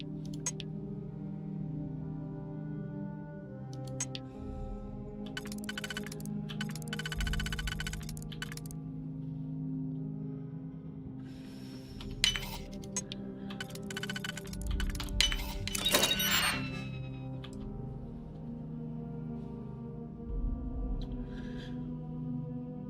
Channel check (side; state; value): both; identical; correlation 1.00